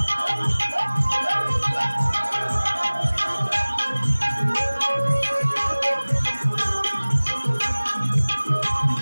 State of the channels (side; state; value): both; inverted; correlation -1.00